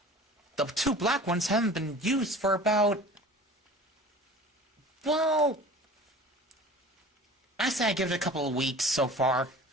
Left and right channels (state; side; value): normal; both; correlation 0.41